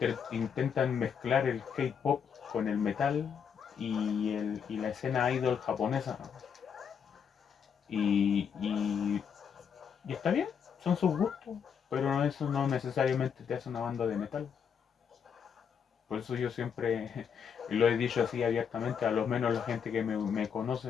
mezclar el K-pop con el metal y la escena idol japonesa. Y, y, y está bien, son sus gustos, pero eso no necesariamente te hace una banda de metal. Por eso yo siempre lo he dicho así abiertamente, a lo menos la gente que me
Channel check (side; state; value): right; quieter; 7.2 dB